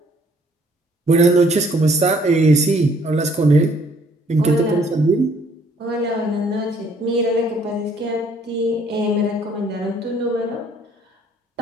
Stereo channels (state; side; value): normal; both; correlation 0.62